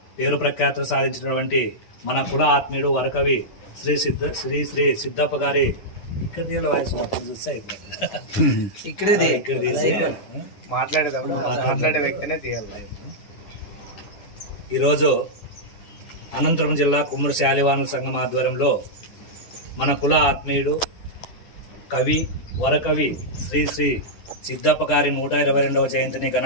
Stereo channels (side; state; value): right; late; 9.8 ms